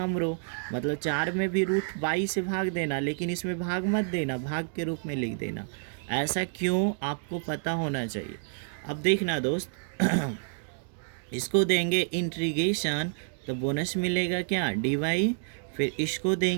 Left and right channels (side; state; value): left; silent; digital silence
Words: रो, मतलब 4 में भी रूट बाई से भाग देना, लेकिन इसमें भाग मत देना, भाग के रूप में लिख देना। ऐसा क्यों, आपको पता होना चाहिए। अब देखना दोस्त इसको देंगे इंटीग्रेशन तो बोनस मिलेगा क्या, डी वाई। फिर इसको